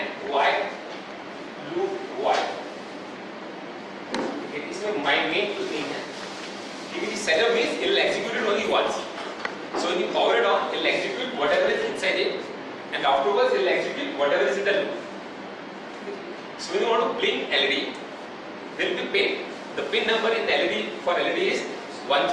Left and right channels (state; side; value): identical; both; correlation 1.00